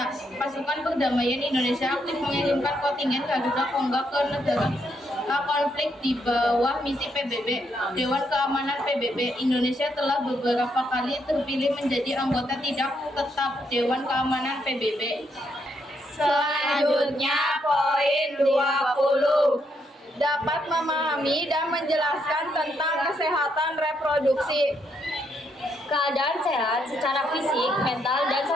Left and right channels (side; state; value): both; normal; correlation 0.76